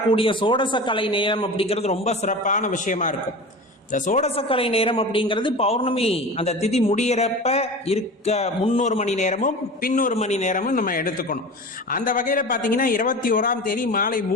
சோடசக்கலை நேரம் அப்படிங்கிறது ரொம்ப சிறப்பான விஷயமா இருக்கும். இந்த சோடசக்கலை நேரம் அப்படிங்கிறது பௌர்ணமி அந்த திதி முடியறப்ப இருக்க 3 மணி நேரமும் பின்னொரு மணி நேரமும் நம்ம எடுத்துக்கணும். அந்த வகையில பாத்தீங்கன்னா 21ஆம் தேதி மாலை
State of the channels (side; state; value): both; normal; correlation 0.33